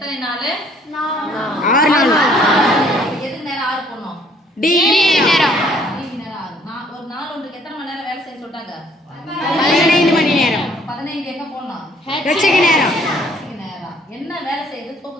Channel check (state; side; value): normal; both; correlation 0.61